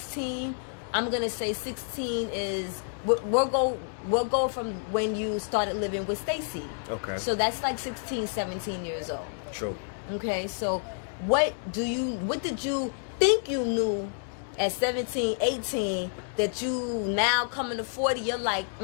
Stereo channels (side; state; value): right; silent; digital silence